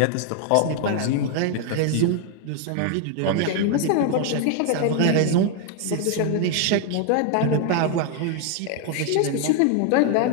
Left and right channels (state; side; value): different; both; correlation 0.01